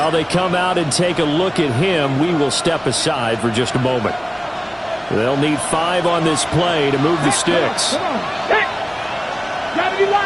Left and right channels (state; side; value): identical; both; correlation 1.00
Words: they come out and take a look at him, we will step aside for just a moment. They'll need 5 on this play to move the sticks. Come on. Hey. Gotta be